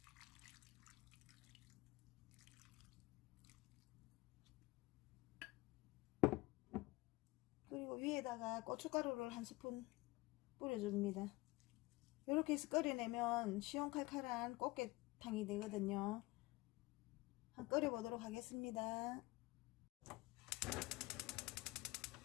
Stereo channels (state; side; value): quieter; right; 21.7 dB